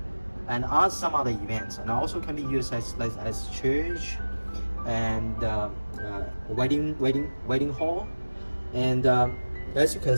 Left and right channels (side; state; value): both; inverted; correlation -1.00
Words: and some other events. And also can be used as church and wedding hall. And as you can